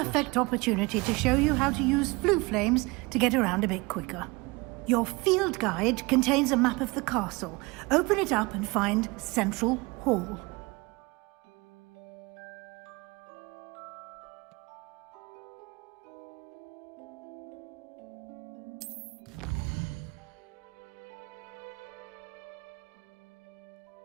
opportunity to show you how to use flue flames to get around a bit quicker. Your field guide contains a map of the castle. Open it up and find Central Hall.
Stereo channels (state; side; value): quieter; left; 25.1 dB